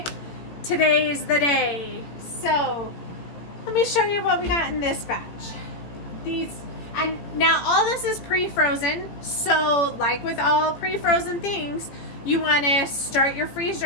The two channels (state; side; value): late; right; 18 ms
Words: Today is the day. So let me show you what we got in this batch. And now all this is pre-frozen. So like with all pre-frozen things, you want to start your freeze